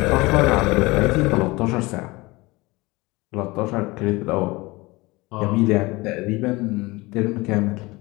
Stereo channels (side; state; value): right; quieter; 22.5 dB